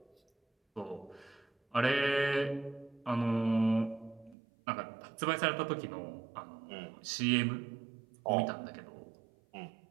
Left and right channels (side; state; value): left; drops out; at 4.4 s